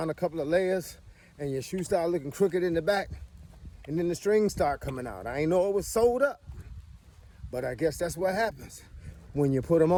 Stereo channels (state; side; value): identical; both; correlation 1.00